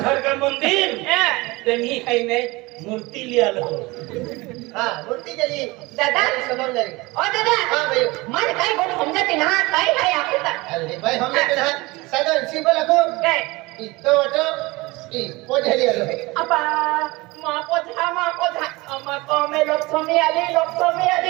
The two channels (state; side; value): quieter; left; 22.6 dB